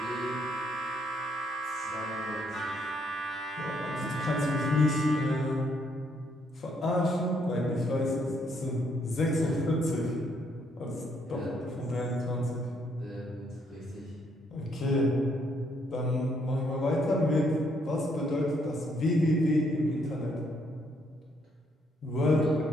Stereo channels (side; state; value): both; normal; correlation 0.71